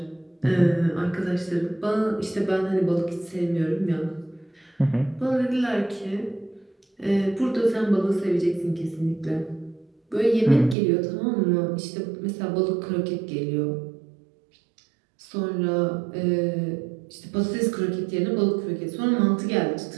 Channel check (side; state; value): left; drops out; at 10.8 s